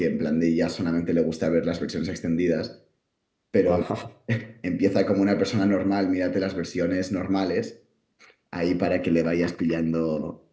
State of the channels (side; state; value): both; identical; correlation 1.00